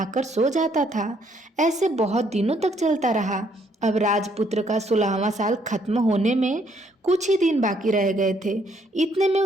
सो जाता था। ऐसे बहुत दिनों तक चलता रहा। अब राजपुत्र का 16वां साल खत्म होने में कुछ ही दिन बाकी रह गए थे। इतने में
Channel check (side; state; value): both; normal; correlation 0.69